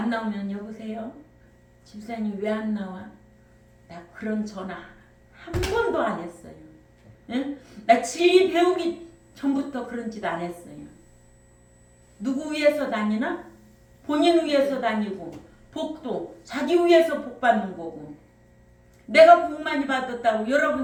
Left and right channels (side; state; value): both; identical; correlation 1.00